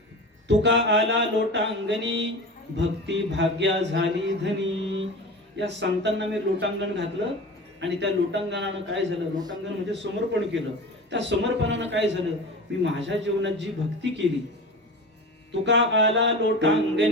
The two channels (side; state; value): both; normal; correlation 0.32